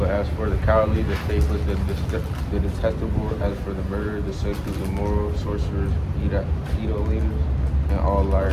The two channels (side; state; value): both; identical; correlation 1.00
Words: as for the cowardly, the faithless, the detestable, as for the murderer, the sexually immoral, sorcerers, idolaters, and all